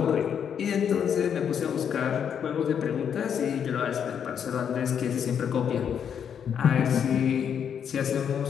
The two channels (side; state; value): right; quieter; 8.0 dB